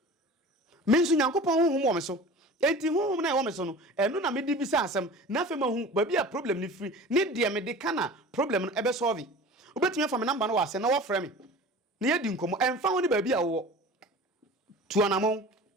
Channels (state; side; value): normal; both; correlation 0.39